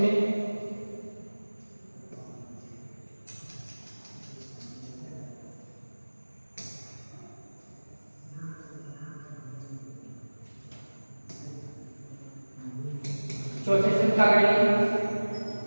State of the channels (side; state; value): both; inverted; correlation -1.00